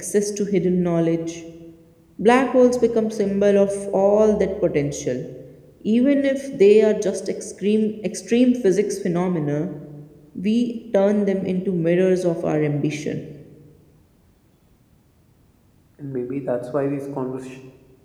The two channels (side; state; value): both; identical; correlation 1.00